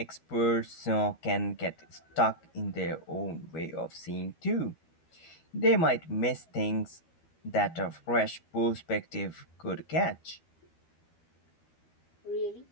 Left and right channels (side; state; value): right; late; 12 ms